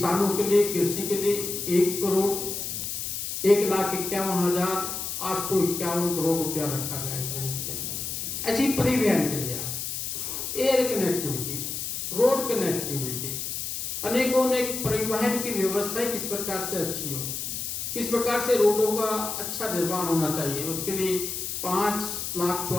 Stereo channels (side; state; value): left; noise; hiss, 4 dB below the sound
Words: के लिए, कृषि के लिए 1,51,851 करोड़ रुपया रखा गया है बजट के अंदर। ऐसी परिवहन के लिए आज एयर कनेक्टिविटी, रोड कनेक्टिविटी, अनेकों परिवहन की व्यवस्था किस प्रकार से अच्छी हो, किस प्रकार से रोडों का अच्छा निर्माण होना चाहिए, उसके लिए